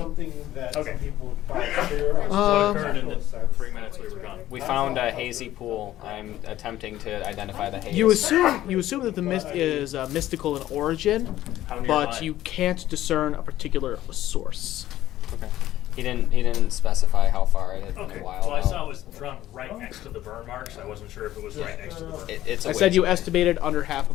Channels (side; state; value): right; quieter; 13.9 dB